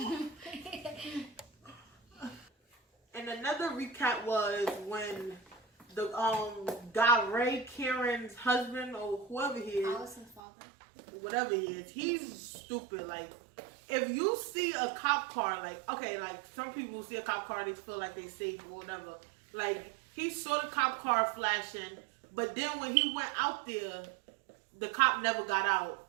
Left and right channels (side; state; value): left; drops out; at 10.4 s